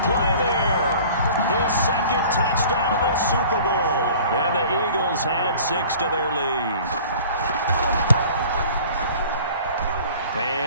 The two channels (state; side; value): inverted; both; correlation -0.46